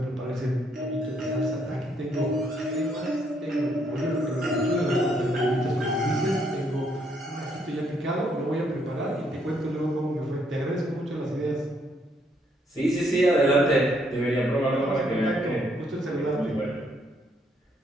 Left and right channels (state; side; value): normal; both; correlation 0.71